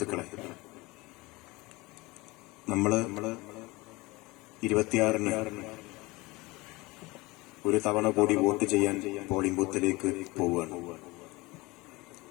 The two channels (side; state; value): right; quieter; 22.4 dB